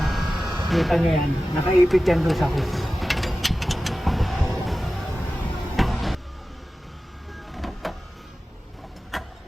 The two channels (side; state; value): both; normal; correlation 0.95